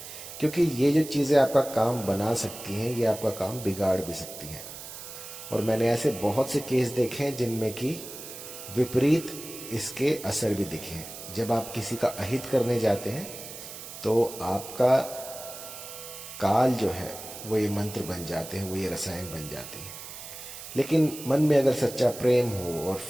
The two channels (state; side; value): noise; right; hiss, 12 dB below the sound